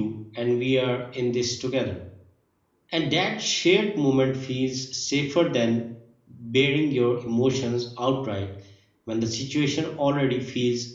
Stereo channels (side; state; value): both; identical; correlation 1.00